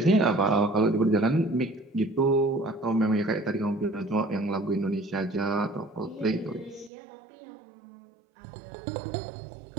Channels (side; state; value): left; drops out; at 6.9 s